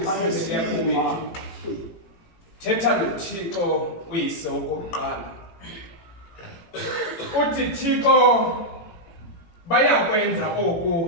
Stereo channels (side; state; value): right; late; 18 ms